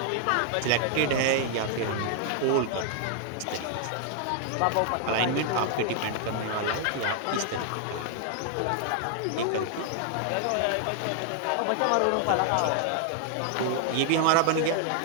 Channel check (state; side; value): different; both; correlation 0.00